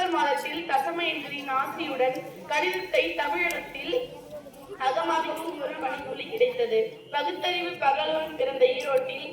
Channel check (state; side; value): identical; both; correlation 1.00